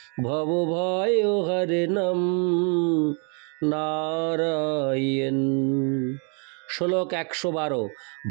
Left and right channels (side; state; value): left; quieter; 38.9 dB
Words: ভবভয় হরণম নারায়ণ। শ্লোক 112।